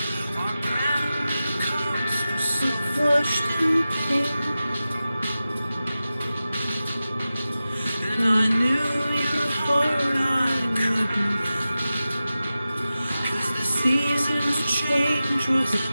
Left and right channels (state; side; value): inverted; both; correlation -0.94